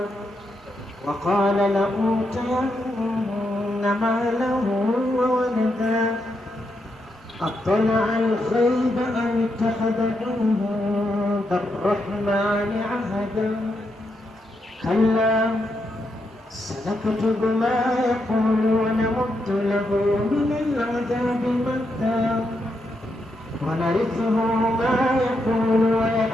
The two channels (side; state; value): both; normal; correlation 0.82